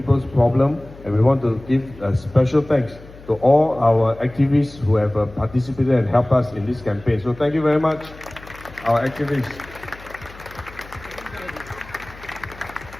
problems, and we want to give a special thanks to all our activists who have participated and helped us in this campaign. So thank you very much, our activists.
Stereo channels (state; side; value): noise; left; hum, 19 dB below the sound